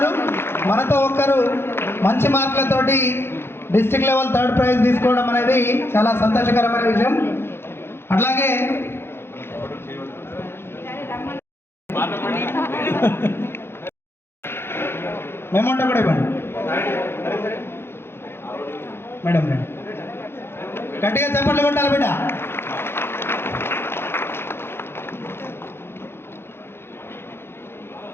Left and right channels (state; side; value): late; right; 0.11 ms